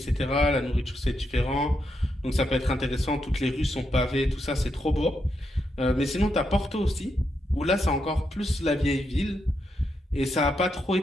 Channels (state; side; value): normal; both; correlation 0.82